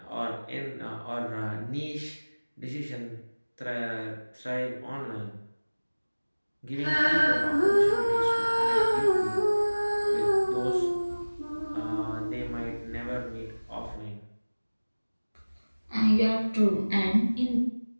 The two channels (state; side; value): inverted; both; correlation -1.00